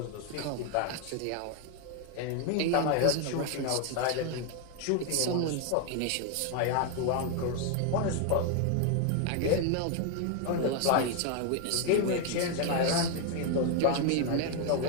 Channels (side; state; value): both; different; correlation 0.01